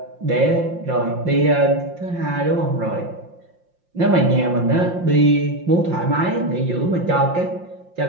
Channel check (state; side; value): late; left; 5.7 ms